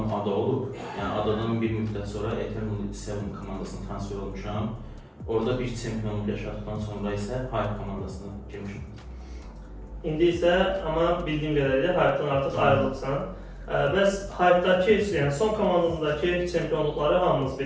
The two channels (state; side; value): identical; both; correlation 1.00